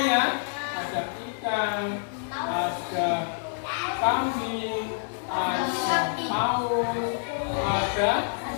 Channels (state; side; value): silent; right; digital silence